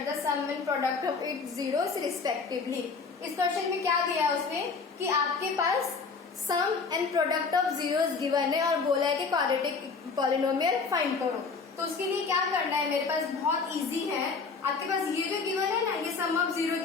the sum and product of its zeros respectively. इस क्वेश्चन में क्या दिया है उसमें कि आपके पास sum and product of zeros given है और बोला है कि क्वाड्रेटिक पॉलिनोमियल फाइंड करो। तो उसके लिए क्या करना है, मेरे पास बहुत इजी है। आपके पास ये जो गिवन है ना, ये सम ऑफ जीरो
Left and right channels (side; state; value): right; quieter; 4.8 dB